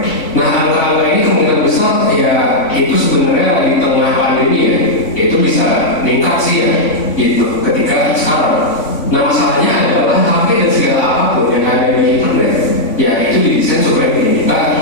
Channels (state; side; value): late; right; 3.5 ms